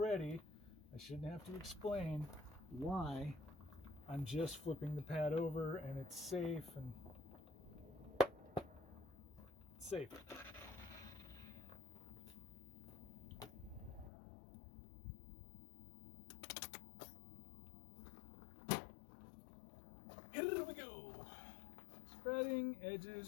I shouldn't have to explain why I'm just flipping the pad over and it's safe and safe. Here we go. Spreading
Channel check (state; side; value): drops out; right; at 14.1 s